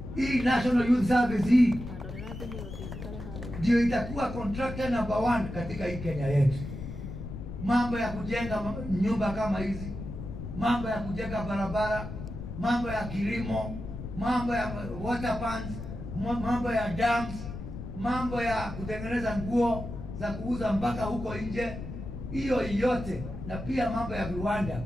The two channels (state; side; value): noise; left; rumble, 9 dB below the sound